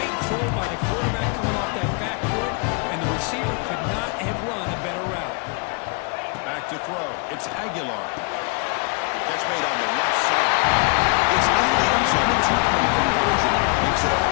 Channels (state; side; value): quieter; right; 32.3 dB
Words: throw by the quarterback coming off that back foot, and the receiver could not have run a better route. Back to throw. It's Aguilar. Catch made on the left side. It's in the end zone. A 2-point conversion makes it a